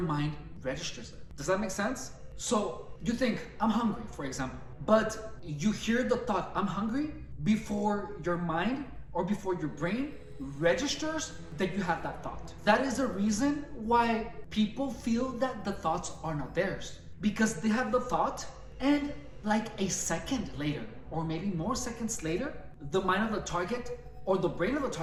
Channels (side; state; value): both; identical; correlation 1.00